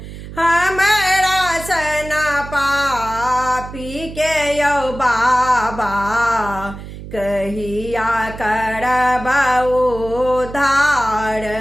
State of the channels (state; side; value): noise; right; hum, 12 dB below the sound